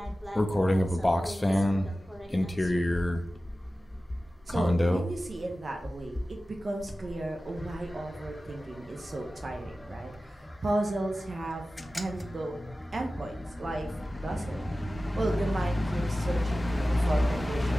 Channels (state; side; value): normal; both; correlation 0.95